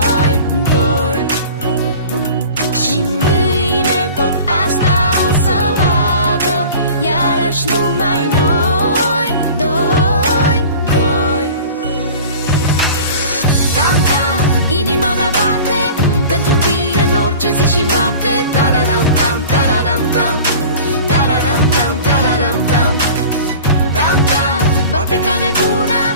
Și mâine tot asta o să vadă, iarăși numai noi, doi. Tam-tam, inima mea bate pentru tine în orice zi și noapte. Tararam-tam, tararam-tam, tararam-tam, tararam-tam, tam-tam, bate ca nebuna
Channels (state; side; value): inverted; both; correlation -0.40